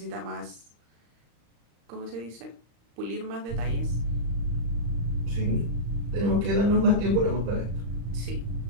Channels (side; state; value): left; late; 35 ms